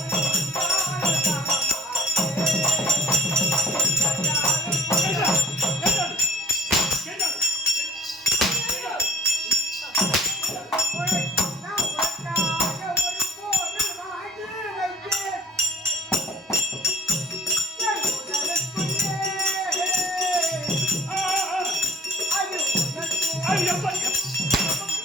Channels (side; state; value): both; normal; correlation 0.52